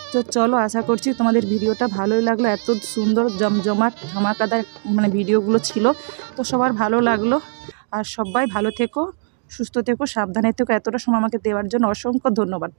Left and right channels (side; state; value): left; silent; digital silence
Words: তো চলো, আশা করছি তোমাদের ভিডিওটা ভালোই লাগলো। এত সুন্দর জমজমাট ধামাকাদার মানে ভিডিওগুলো ছিল, তো সবার ভালো লাগলো। আর সবাই ভালো থেকো, সুস্থ থেকো, সাবধানে থেকো। এতটা সময় আমাকে দেওয়ার জন্য অসংখ্য ধন্যবাদ।